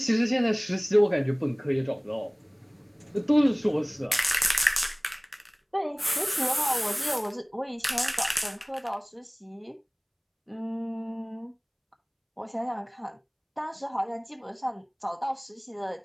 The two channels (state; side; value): identical; both; correlation 1.00